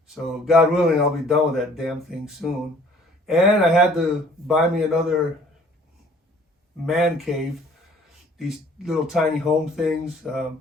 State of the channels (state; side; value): normal; both; correlation 0.55